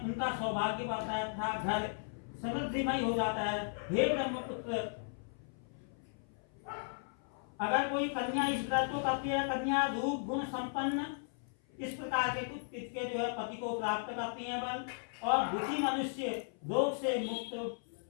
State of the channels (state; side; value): silent; right; 54 dB below the other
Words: उनका सौभाग्य बढ़ता है तथा घर समृद्धिमय हो जाता है। हे ब्रह्मपुत्र, अगर कोई कन्या इस व्रत को करती है, कन्या रूप गुण संपन्न इस प्रकार के कुछ के जो है पति को प्राप्त करती है बल, और दुखी मनुष्य रोग से मुक्त